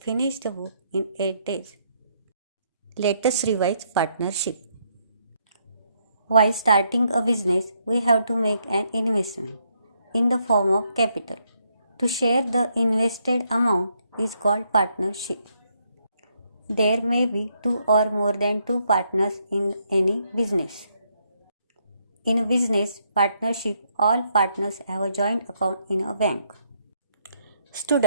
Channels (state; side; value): inverted; both; correlation -0.74